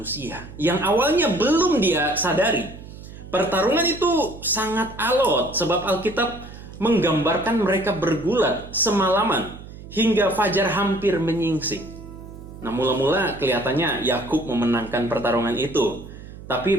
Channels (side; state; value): right; noise; hum, 15 dB below the sound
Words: yang awalnya belum dia sadari. Pertarungan itu sangat alot sebab Alkitab menggambarkan mereka bergulat semalaman hingga fajar hampir menyingsing. Nah, mula-mula kelihatannya Yakub memenangkan pertarungan itu.